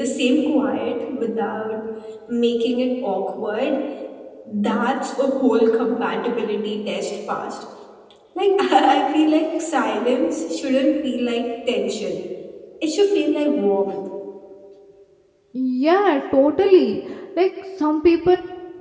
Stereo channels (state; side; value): identical; both; correlation 1.00